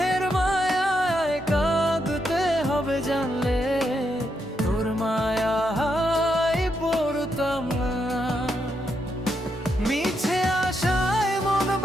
মায়ায় কাঁদতে হবে জানলে তোর মায়ায় পড়তাম না। মিছে আশায় মন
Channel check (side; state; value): both; normal; correlation 0.81